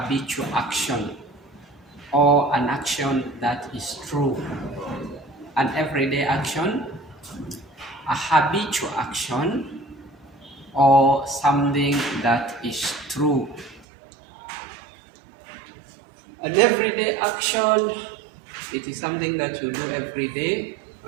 action or an action that is true. An everyday action, a habitual action, or something that is true. An everyday action, it is something that you do every day.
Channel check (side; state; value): left; drops out; at 13.9 s